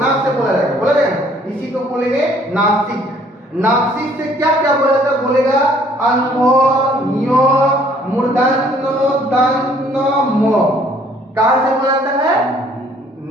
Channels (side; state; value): both; normal; correlation 0.60